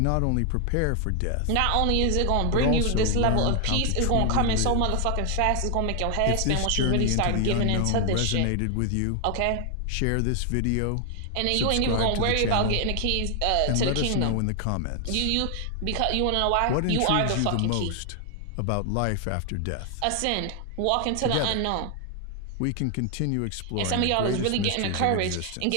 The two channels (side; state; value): both; different; correlation 0.00